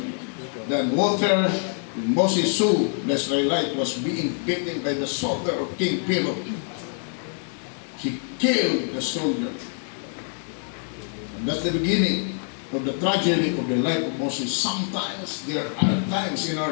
than water. When Moses saw the Israelite was being beaten by the soldier of King Pharaoh, he killed the soldier. And that's the beginning of the tragedy of the life of Moses. Sometimes there are times in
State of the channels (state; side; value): silent; right; 56 dB below the other